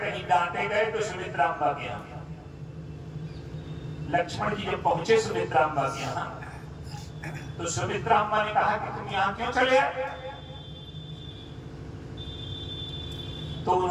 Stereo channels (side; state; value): both; identical; correlation 1.00